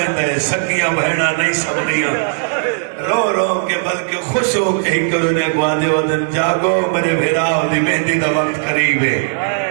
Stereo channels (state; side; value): silent; left; 65 dB below the other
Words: ہے سگیاں بہنا نہیں سبنیاں رو رو کے بلکہ خوش ہو کے ہی کرنے قواد ودن جاگو میرے بھرا دی مہندی دا وقت قریب ہے